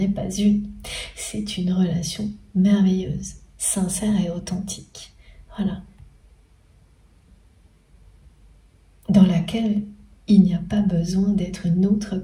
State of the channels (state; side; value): identical; both; correlation 1.00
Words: pas une. C'est une relation merveilleuse, sincère et authentique. Voilà. Dans laquelle il n'y a pas besoin d'être une autre